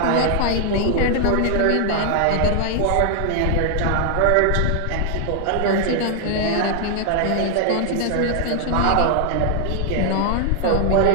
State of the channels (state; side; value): different; both; correlation 0.00